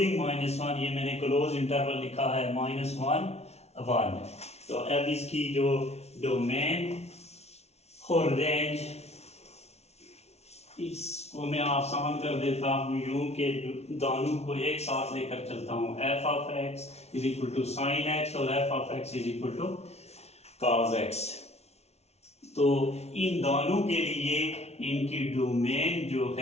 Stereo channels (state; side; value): late; right; 0.31 ms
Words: -1। ये मैंने क्लोज इंटरवल लिखा है, -1 1। तो अब इसकी जो डोमेन और रेंज, इसको मैं आसान कर देता हूँ यूं के दोनों को एक साथ लेकर चलता हूँ। F of x is equal to sine X और F of x is equal to cos X. तो इन दोनों के लिए इनकी डोमेन जो